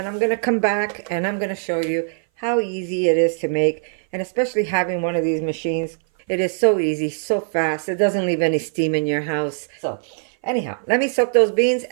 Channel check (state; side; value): silent; left; 59 dB below the other